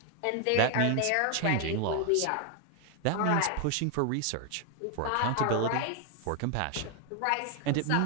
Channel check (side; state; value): both; different; correlation 0.01